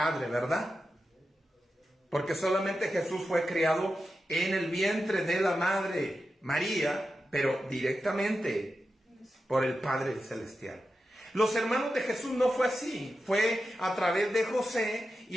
¿verdad? Porque solamente Jesús fue criado en el vientre de la Madre María, pero directamente por el Padre Celestial. Los hermanos de Jesús no fue así, fue a través de José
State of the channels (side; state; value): both; normal; correlation 0.90